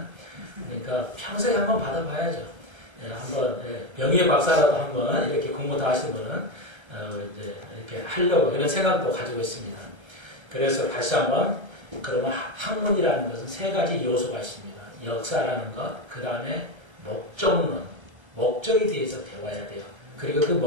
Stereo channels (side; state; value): left; late; 1.3 ms